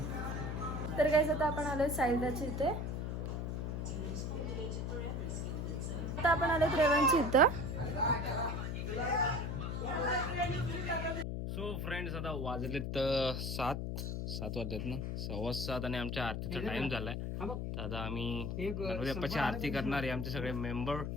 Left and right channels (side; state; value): left; noise; hum, 2 dB below the sound